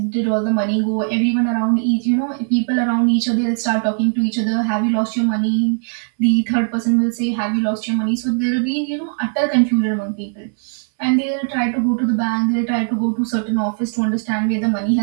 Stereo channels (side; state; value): left; silent; 67 dB below the other